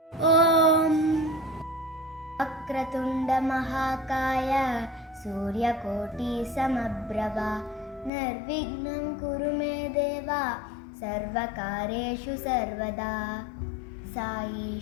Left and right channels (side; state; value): right; drops out; at 8.1 s